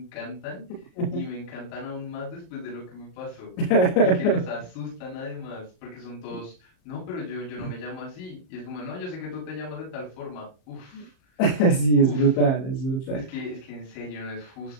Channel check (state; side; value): late; right; 38 ms